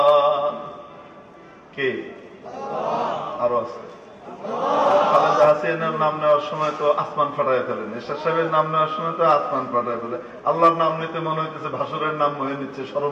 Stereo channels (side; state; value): both; identical; correlation 1.00